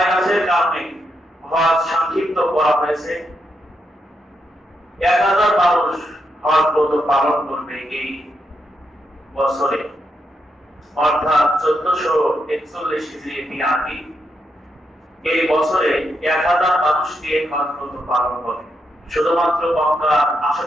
কারণে হজ সংক্ষিপ্ত করা হয়েছে। 1000 মানুষ হজ ব্রত পালন করবে এই বছরে অর্থাৎ 1441 হিজরি মিলাদি এই বছরে 1000 মানুষ দিয়ে হজ পালন করে। শুধুমাত্র মক্কার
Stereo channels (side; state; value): both; normal; correlation 0.82